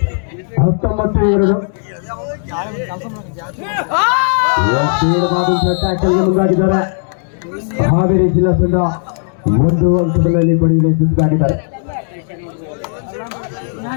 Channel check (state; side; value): silent; right; digital silence